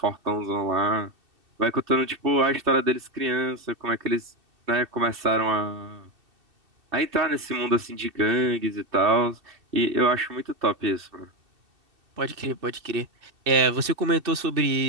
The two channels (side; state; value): left; late; 2.7 ms